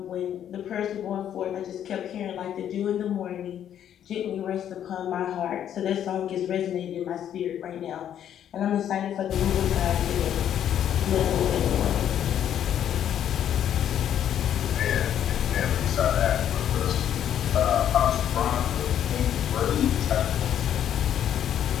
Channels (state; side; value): quieter; right; 10.0 dB